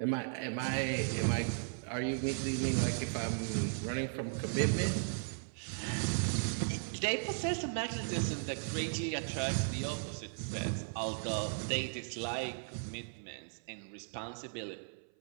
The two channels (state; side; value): silent; left; 53 dB below the other